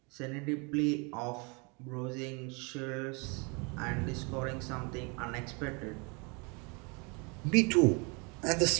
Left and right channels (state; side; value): quieter; left; 31.3 dB